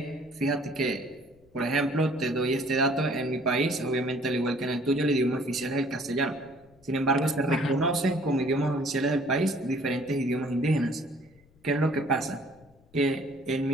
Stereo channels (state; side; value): noise; left; rumble, 29 dB below the sound